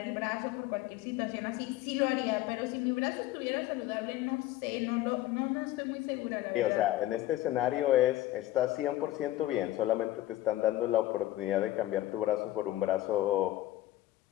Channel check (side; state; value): right; quieter; 15.3 dB